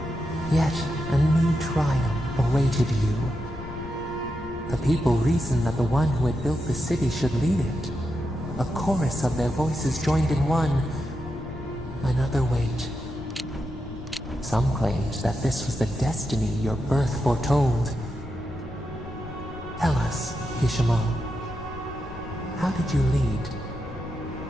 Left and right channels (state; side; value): noise; left; rumble, 15 dB below the sound